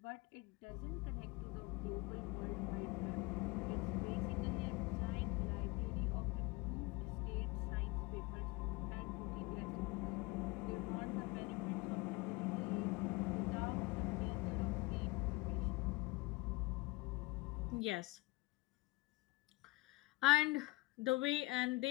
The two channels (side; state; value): right; quieter; 22.3 dB